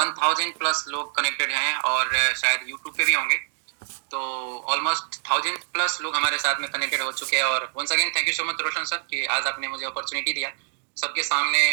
प्लस लोग कनेक्टेड हैं और शायद यूट्यूब पे भी होंगे, तो ऑलमोस्ट 1000 प्लस लोग हमारे साथ में कनेक्टेड हो चुके हैं। और once again thank you so much Roshan sir कि आज आपने मुझे अपॉर्चुनिटी दिया सबके सामने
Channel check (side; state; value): left; silent; digital silence